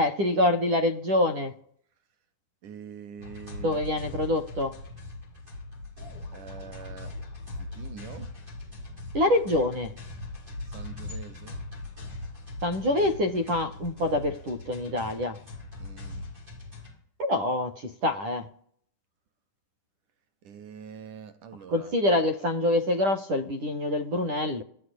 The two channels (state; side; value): late; left; 10 ms